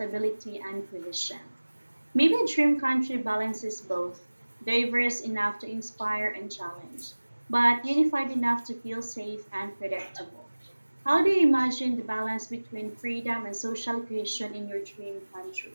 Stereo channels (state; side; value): inverted; both; correlation -1.00